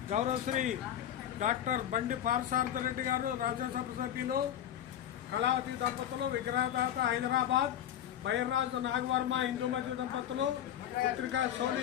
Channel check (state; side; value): quieter; right; 10.8 dB